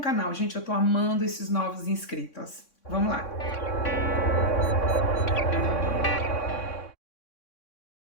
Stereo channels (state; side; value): late; right; 3.6 ms